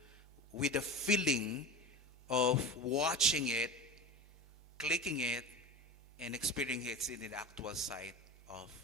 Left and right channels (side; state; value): both; normal; correlation 0.29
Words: with a feeling of watching it, clicking it, and experiencing it in the actual site of